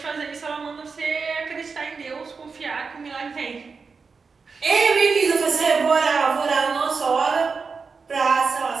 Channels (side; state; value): left; quieter; 4.9 dB